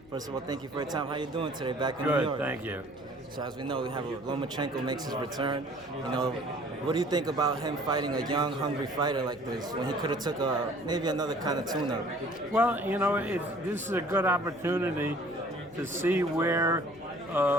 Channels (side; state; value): left; noise; hum, 26 dB below the sound